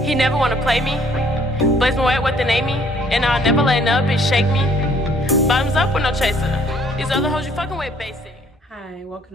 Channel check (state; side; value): normal; both; correlation 0.62